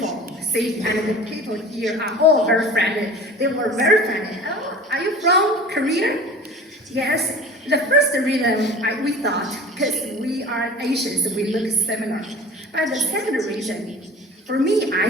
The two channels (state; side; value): normal; both; correlation 0.40